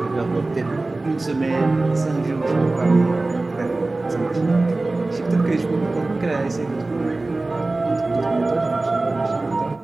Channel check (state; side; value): quieter; left; 3.1 dB